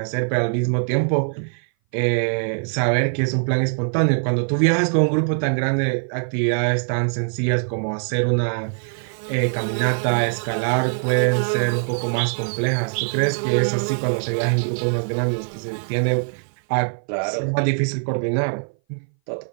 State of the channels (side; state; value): left; silent; 59 dB below the other